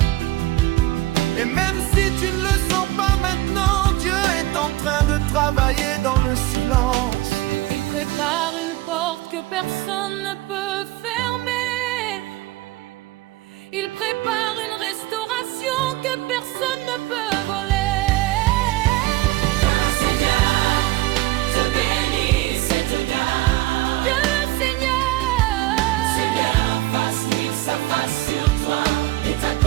Et même si tu ne le sens pas maintenant, Dieu est en train de travailler dans le silence. Il prépare une porte que personne ne peut fermer. Il prépare une restauration que personne ne peut voler. Que le Seigneur te bénisse et te garde. Que le Seigneur fasse lire sa face sur toi et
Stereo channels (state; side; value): quieter; left; 18.1 dB